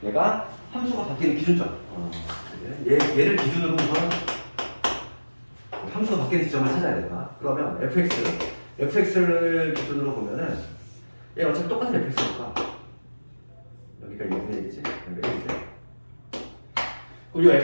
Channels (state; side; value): inverted; both; correlation -1.00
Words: 얘가 함수가 바뀌는 기준점. 얘를 기준으로 우선 함수가 바뀌는 지점을 찾아야 된다. 그러면 fx를 기준으로 보면은 얘 어차피 똑같은 fx니까 여기가 2분의 1이지? 여기가 1이지? 그럼 이